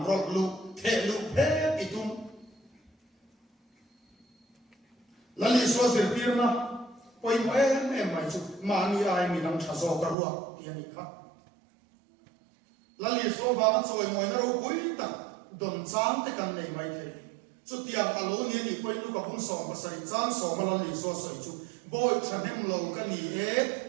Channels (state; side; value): drops out; left; at 10.2 s